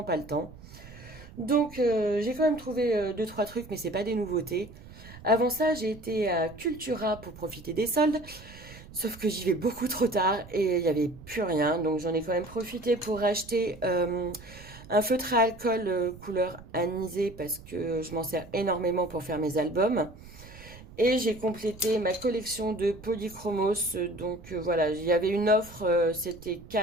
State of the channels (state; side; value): noise; right; rumble, 18 dB below the sound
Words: pas le temps. Donc j'ai quand même trouvé deux trois trucs, mais c'est pas des nouveautés. Avant ça j'ai été à Cultura pour profiter des soldes. Sauf que j'y vais beaucoup trop tard et il n'y avait plus rien. Donc j'en ai quand même profité pour acheter un feutre à alcool couleur anisée parce que je m'en sers énormément pour faire mes albums. Et j'ai complété ma collection de polychromos. Donc voilà, il y avait une offre, c'était